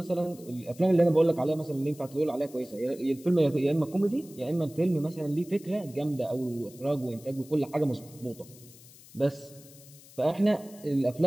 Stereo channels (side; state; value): left; noise; hiss, 22 dB below the sound